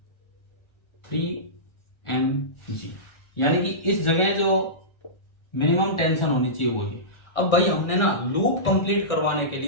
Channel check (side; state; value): right; late; 1.4 ms